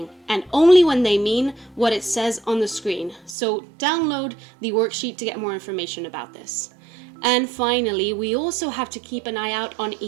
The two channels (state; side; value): drops out; left; at 3.4 s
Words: and only when they mean what it says on the screen. So download the worksheet to get more information about this. And finally, we also have to keep an eye out on